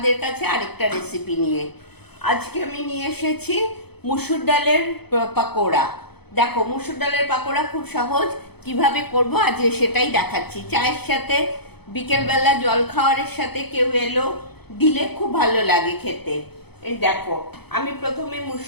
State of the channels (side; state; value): right; late; 0.98 ms